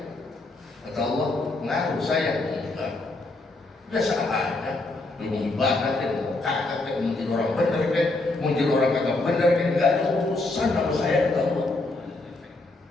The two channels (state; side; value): quieter; right; 3.0 dB